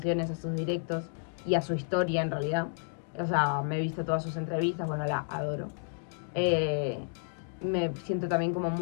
a sus directos y a su historia en realidad. O sea, me he visto todas sus entrevistas, bueno, la adoro. Me siento también como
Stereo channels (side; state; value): right; silent; digital silence